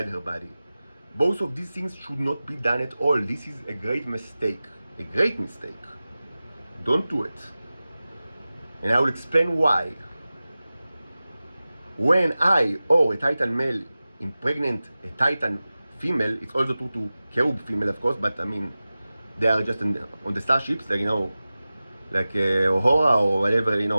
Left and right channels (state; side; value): inverted; both; correlation -0.96